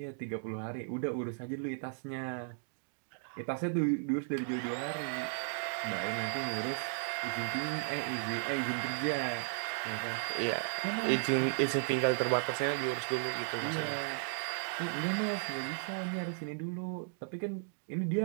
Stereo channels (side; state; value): left; silent; digital silence